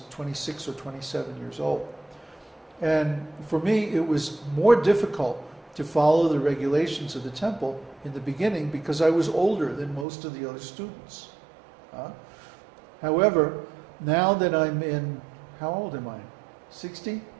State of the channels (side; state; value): left; drops out; at 10.1 s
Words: 26 or 27 years old. And for me, it was more difficult to follow the regulations of the temple in the beginning because I was older than most of the other students. However, now that I'm in, how old am I? 60?